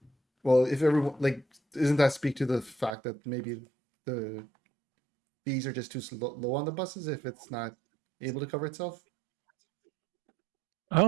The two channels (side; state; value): left; drops out; at 3.0 s